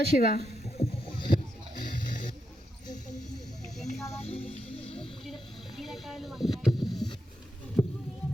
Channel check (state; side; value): normal; both; correlation 0.84